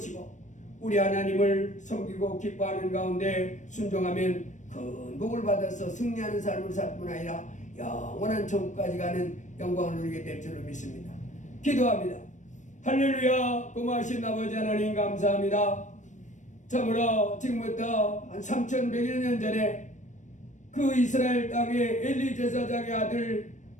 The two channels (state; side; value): late; right; 0.35 ms